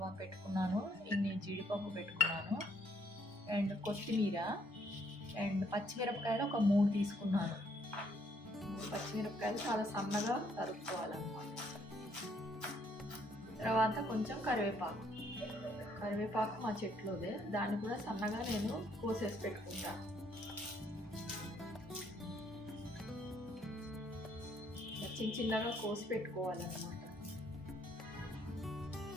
పెట్టుకున్నాను. ఇన్ని జీడిపప్పు పెట్టుకున్నాను అండ్ కొత్తిమీర అండ్ పచ్చిమిరపకాయలు ఒక 3 తీసుకున్నాను. పచ్చిమిరపకాయలు చాలా సన్నగా తరుక్కోవాలన్నమాట. తర్వాత కొంచెం కరివేపాకు మా చెట్లోదే, దాన్ని కూడా సన్నగా నేను కోసేసి పెట్టుకుంటాను. చిన్నగా కోసి పెట్టుకోవాలన్నమాట.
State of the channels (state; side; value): normal; both; correlation 0.68